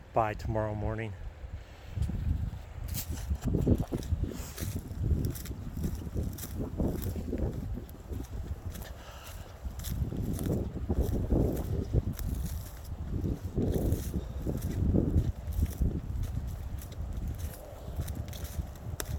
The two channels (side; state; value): both; identical; correlation 1.00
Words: by tomorrow morning.